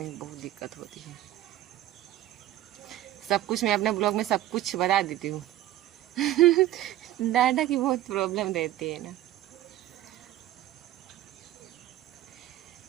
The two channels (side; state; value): left; quieter; 14.0 dB